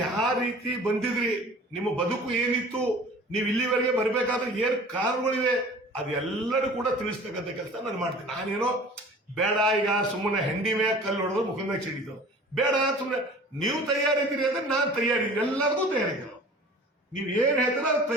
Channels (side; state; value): both; normal; correlation 0.44